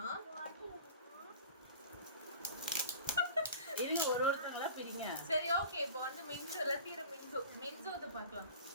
இருங்க ஒருத்தங்களா பிரிங்க. சரி ஓகே. இப்போ வந்து மின்சு லத்தீர மின்சு வந்து பார்க்கலாம்.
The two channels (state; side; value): inverted; both; correlation -0.39